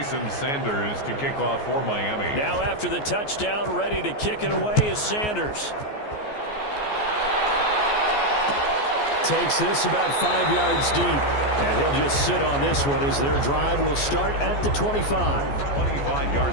Sanders to kick off for Miami. Now after the touchdown, ready to kick it away is Sanders. Takes this about 5 yards deep. And he'll just sit on this one as their drive will start at the 25.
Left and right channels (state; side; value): late; right; 14 ms